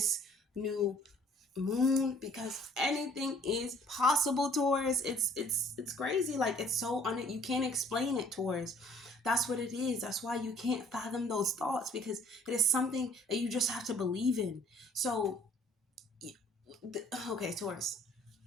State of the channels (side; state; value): both; normal; correlation 0.57